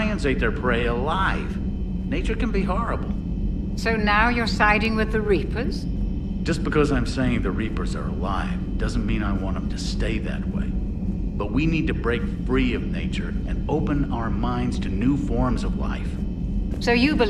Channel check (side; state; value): both; identical; correlation 1.00